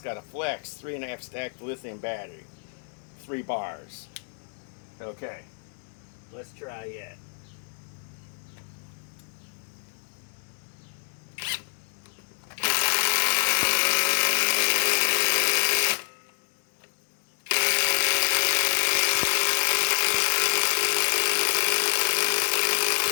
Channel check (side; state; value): right; silent; 60 dB below the other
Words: got a flex 3.5 stacked lithium battery, 3 bars. Okay, let's try it.